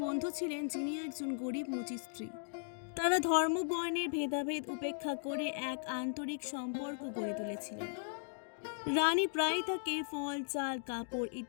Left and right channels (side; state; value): right; silent; digital silence